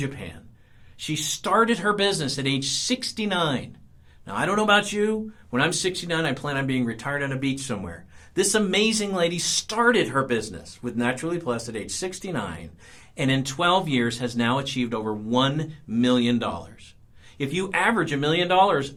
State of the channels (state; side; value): identical; both; correlation 1.00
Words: She started her business at age 69. Now, I don't know about you. When I'm 69, I plan on being retired on a beach somewhere. This amazing lady started her business with Naturally Plus at age 69, and in 12 years has now achieved over $1 million. If you average $1 million